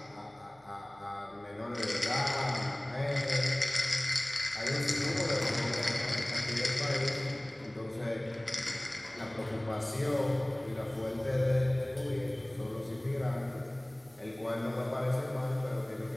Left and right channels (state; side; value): noise; right; hum, 30 dB below the sound